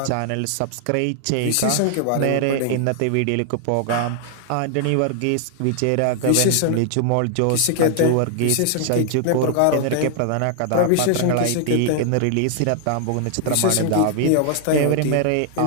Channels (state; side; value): different; both; correlation 0.00